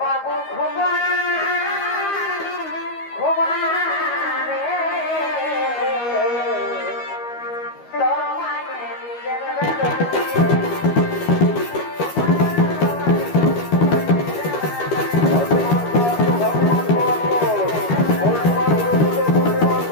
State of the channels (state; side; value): late; right; 13 ms